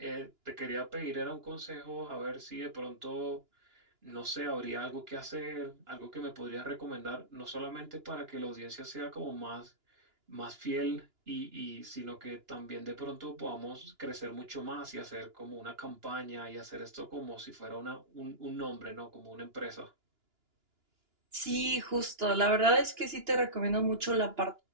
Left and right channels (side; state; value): left; late; 2.9 ms